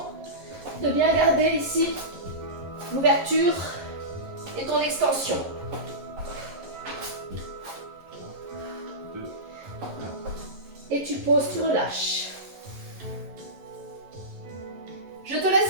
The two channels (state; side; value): late; left; 11 ms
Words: de bien garder ici l'ouverture et ton extension. 2, Et tu poses, tu relâches. Je te